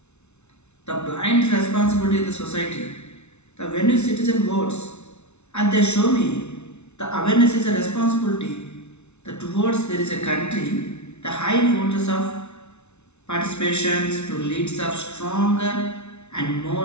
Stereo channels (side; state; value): right; late; 0.81 ms